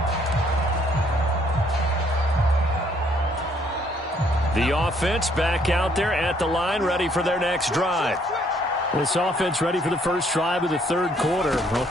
The offense back out there at the line, ready for their next drive. This offense ready for the first drive of the third quarter. Well,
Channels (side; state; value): both; normal; correlation 0.66